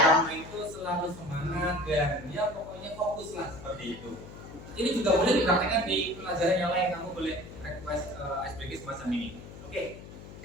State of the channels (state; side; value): noise; left; hum, 15 dB below the sound